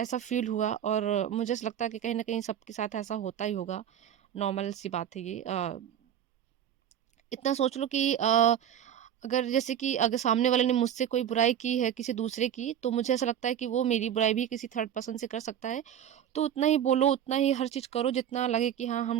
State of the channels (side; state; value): left; quieter; 9.9 dB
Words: फ़ील हुआ, और मुझे ऐसा लगता है कि कहीं न कहीं सबके साथ ऐसा होता ही होगा, नॉर्मल सी बात है ये। इतना सोच लो कि अगर जैसे कि अगर सामने वाले ने मुझसे कोई बुराई की है किसी दूसरे की, तो मुझे ऐसा लगता है कि वो मेरी बुराई भी किसी थर्ड पर्सन से कर सकता है। तो उतना ही बोलो, उतना ही हर चीज़ करो जितना लगे कि हाँ,